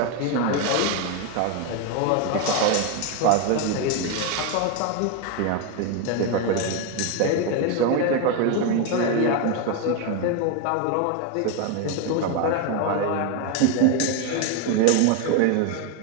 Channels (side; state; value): both; different; correlation 0.02